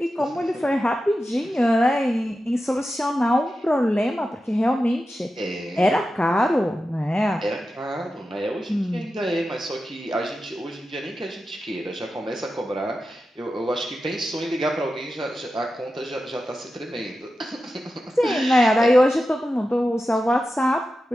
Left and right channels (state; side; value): normal; both; correlation 0.92